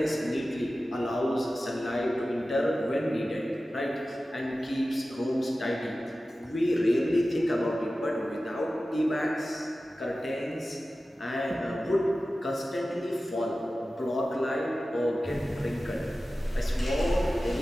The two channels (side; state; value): both; normal; correlation 0.95